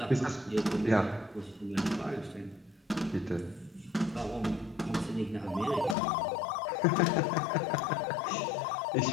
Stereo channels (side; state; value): right; drops out; at 6.0 s